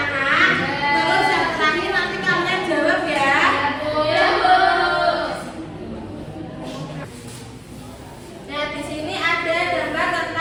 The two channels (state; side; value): identical; both; correlation 1.00